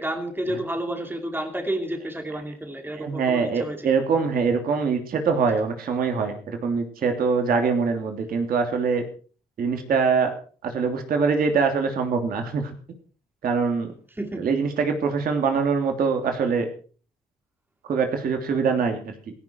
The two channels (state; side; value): quieter; left; 4.6 dB